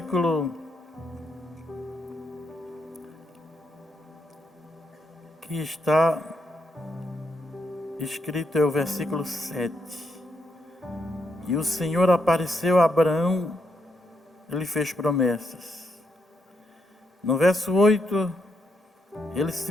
que está escrito, é o versículo 7. E o Senhor apareceu a Abraão, ele fez promessas. No verso 8, ele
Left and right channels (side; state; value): both; normal; correlation 0.79